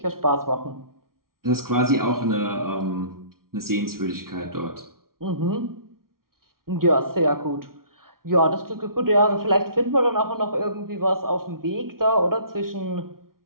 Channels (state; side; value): late; left; 0.93 ms